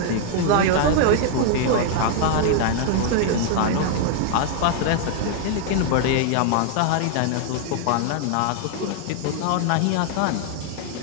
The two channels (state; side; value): different; both; correlation 0.00